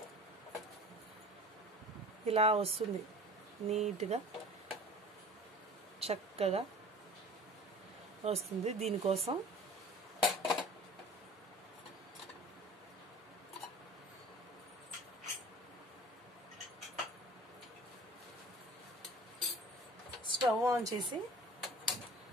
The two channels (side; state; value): both; normal; correlation 0.43